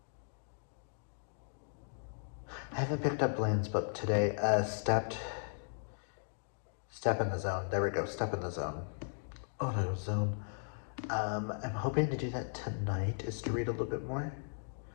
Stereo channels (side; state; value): right; silent; digital silence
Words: I haven't picked up Blaine's book today. Step in the Zone. There we go. Step in the Zone. Auto Zone. I'm hoping to do that tonight, is to read a little bit more.